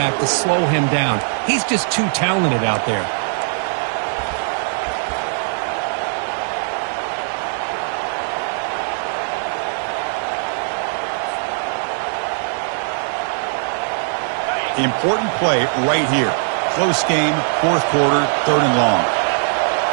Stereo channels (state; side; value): silent; left; digital silence